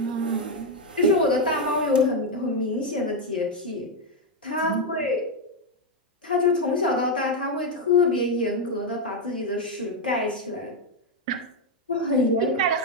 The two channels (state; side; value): normal; both; correlation 0.04